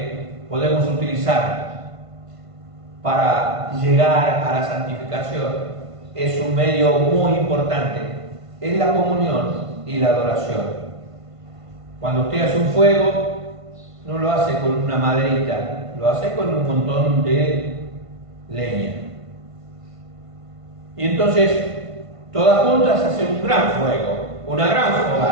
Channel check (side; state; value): left; late; 1.5 ms